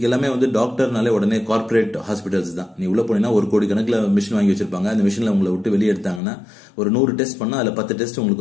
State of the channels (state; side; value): drops out; right; at 6.2 s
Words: எல்லாமே டாக்டர்னாலே உடனே கார்பரேட் ஹாஸ்பிட்டல்ஸ் தான். நீ உள்ள போனீங்கன்னா 1 கோடி கணக்கில் மிஷின் வாங்கி வச்சிருப்பாங்க. அந்த மிஷின்ல உங்களை விட்டு வெளியே எடுத்தாங்கன்னா ஒரு 100 டெஸ்ட் பண்ணா அதுல 10 டெஸ்ட்